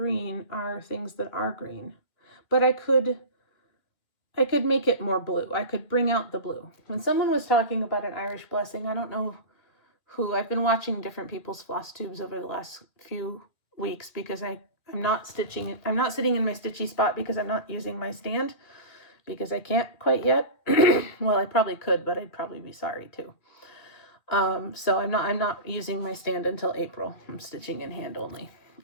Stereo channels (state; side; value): late; right; 2.4 ms